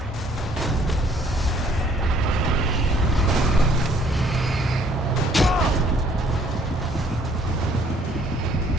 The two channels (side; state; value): both; normal; correlation 0.62